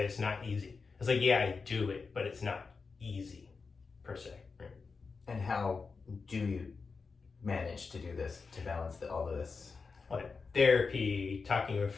it's not easy. It's like, yeah, I do it, but it's not easy per se. Right? And how do you manage to do this, to balance all of this? Like therapy, talking with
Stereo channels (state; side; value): quieter; right; 4.7 dB